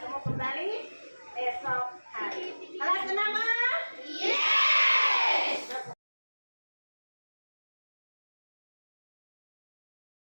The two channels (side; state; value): both; inverted; correlation -1.00